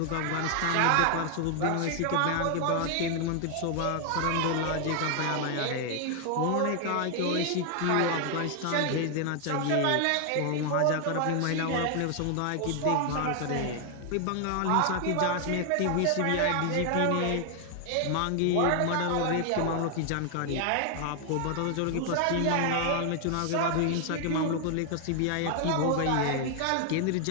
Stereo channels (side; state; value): both; different; correlation 0.00